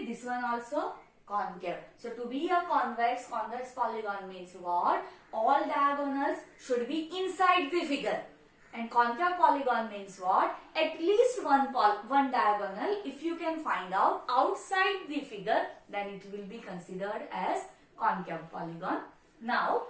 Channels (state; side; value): identical; both; correlation 1.00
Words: this one also concave. So to be a convex polygon means what? All diagonals should be inside the figure. And concave polygon means what? At least one diagonal, if you can find out outside the figure, then it will be considered as concave polygon. Now,